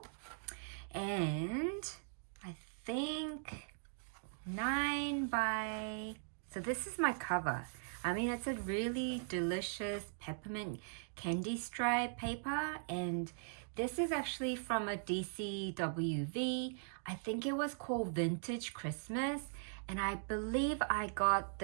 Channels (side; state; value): left; silent; digital silence